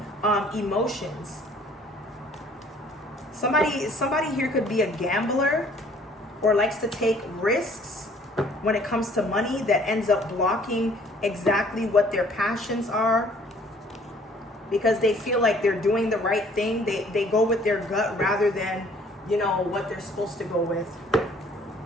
emotions. Somebody here could be a gambler or likes to take risks when it comes to money that ends up blocking exactly what their passions are. Because they feel like they're doing the right thing. They go with their gut rather than, what they're supposed to go with.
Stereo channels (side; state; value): both; normal; correlation 0.57